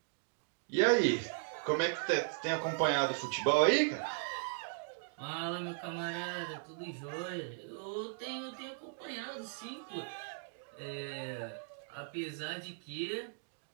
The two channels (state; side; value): silent; left; digital silence